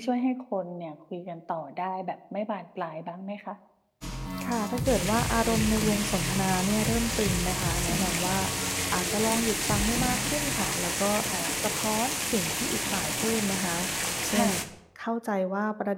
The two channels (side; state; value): both; identical; correlation 1.00